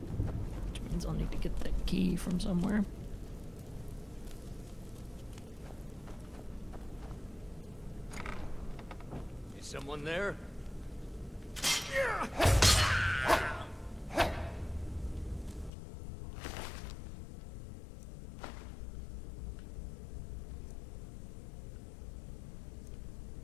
Which means I'll need to get that key from somewhere. Is someone there?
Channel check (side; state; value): right; drops out; at 15.7 s